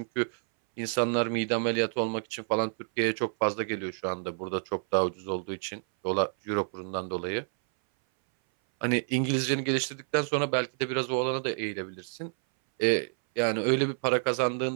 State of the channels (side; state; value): left; silent; 59 dB below the other